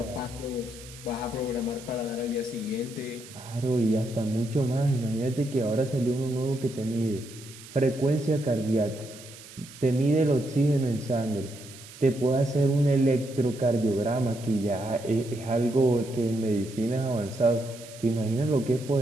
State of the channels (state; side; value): noise; right; hiss, 18 dB below the sound